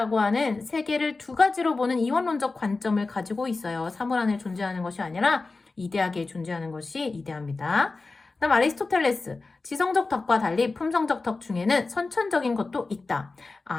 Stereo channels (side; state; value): right; quieter; 3.7 dB